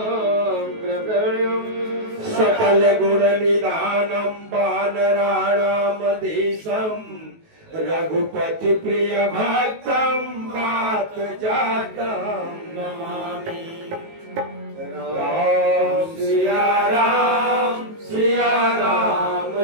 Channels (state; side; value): late; left; 19 ms